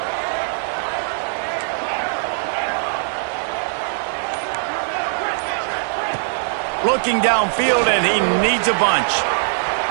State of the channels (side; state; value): left; silent; digital silence